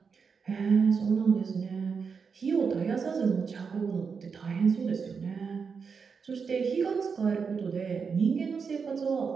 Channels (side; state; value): left; quieter; 5.7 dB